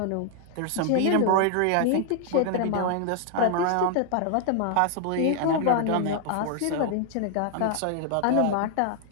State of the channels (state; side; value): different; both; correlation 0.00